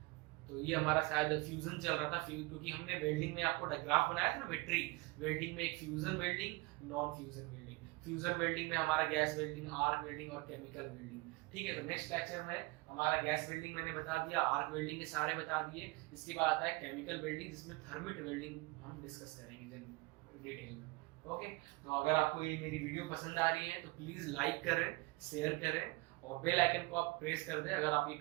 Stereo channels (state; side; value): quieter; left; 24.1 dB